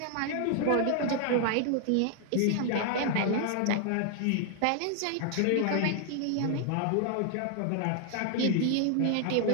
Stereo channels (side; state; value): both; different; correlation 0.00